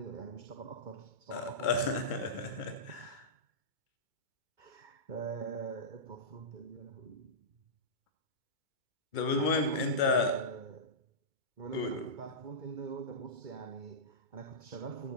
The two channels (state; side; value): late; left; 2.2 ms